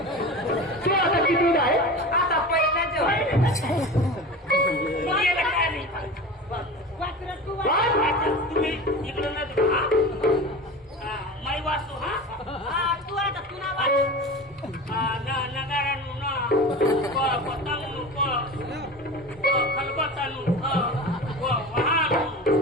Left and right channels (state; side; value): normal; both; correlation 0.32